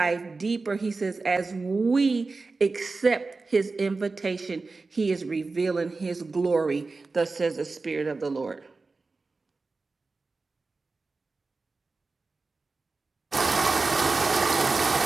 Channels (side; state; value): left; quieter; 3.8 dB